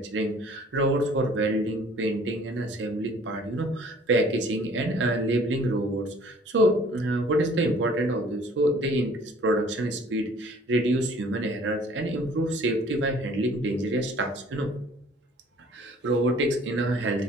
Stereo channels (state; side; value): normal; both; correlation 0.53